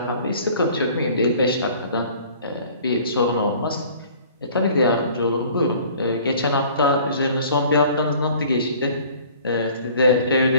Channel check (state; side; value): inverted; both; correlation -0.51